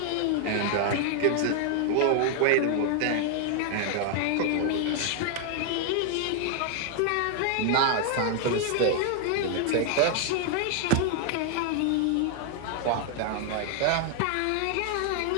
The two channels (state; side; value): different; both; correlation 0.00